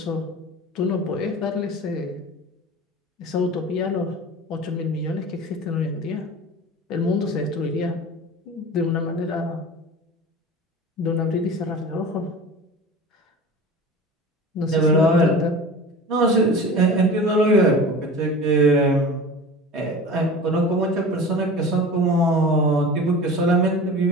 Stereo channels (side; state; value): both; normal; correlation 0.36